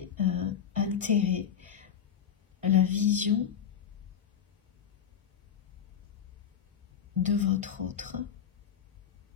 altéré la vision de votre autre,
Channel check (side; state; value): right; quieter; 8.3 dB